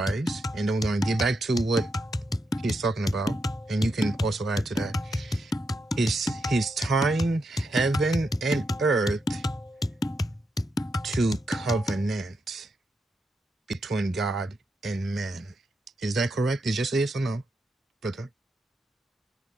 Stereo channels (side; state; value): both; normal; correlation 0.84